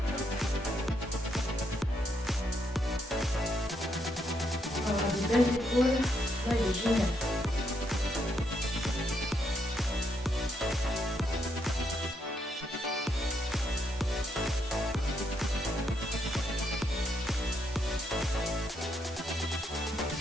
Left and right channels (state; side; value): normal; both; correlation 0.77